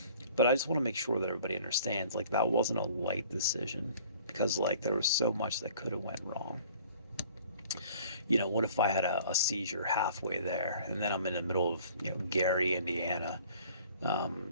But I just want to make sure that everybody understands, like, that wasn't a light decision. Because, like, there was so much that could have went wrong. What if I had a seizure halfway there? And then I'm in the middle of, Gary, Indiana.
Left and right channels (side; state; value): both; inverted; correlation -0.52